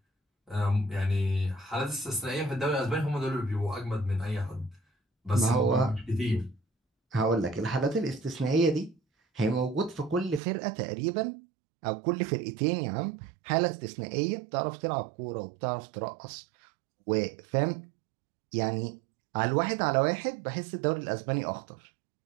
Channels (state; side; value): drops out; left; at 10.4 s